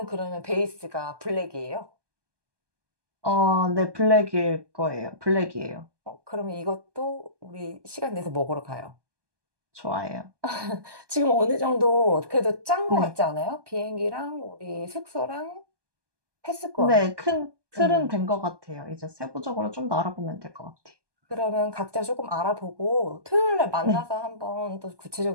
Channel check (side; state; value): left; late; 1.2 ms